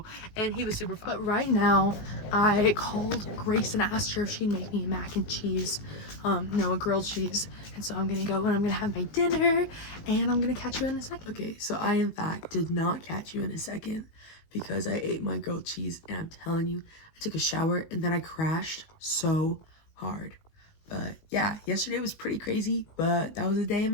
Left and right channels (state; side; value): late; right; 19 ms